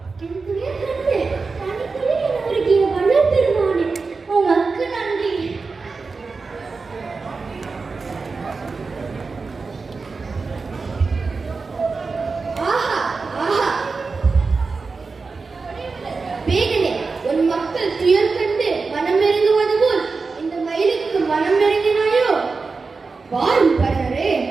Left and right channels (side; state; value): left; quieter; 4.4 dB